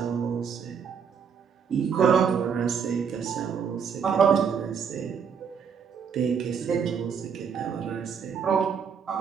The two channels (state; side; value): quieter; left; 6.8 dB